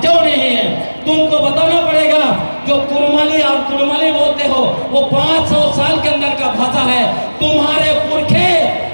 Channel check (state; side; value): inverted; both; correlation -1.00